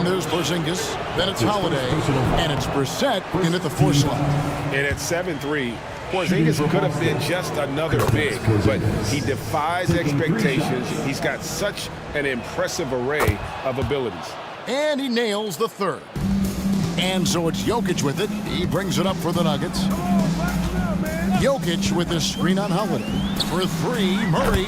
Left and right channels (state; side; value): identical; both; correlation 1.00